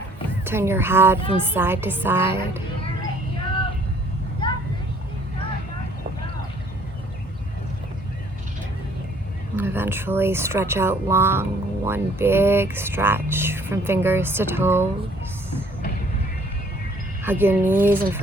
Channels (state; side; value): normal; both; correlation 0.58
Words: Turn your head from side to side. And eventually stretch out long, one big stretch from fingers to toes. Hug your knees in